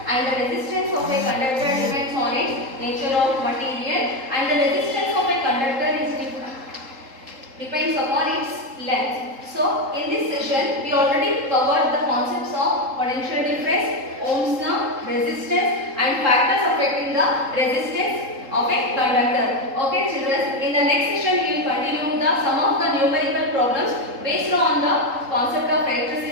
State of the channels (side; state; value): left; late; 3.8 ms